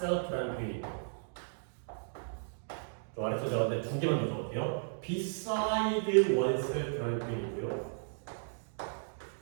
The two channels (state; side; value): silent; left; digital silence